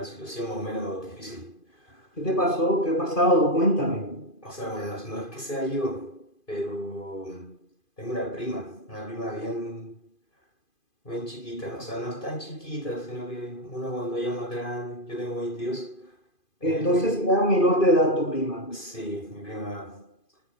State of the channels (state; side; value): late; right; 2.5 ms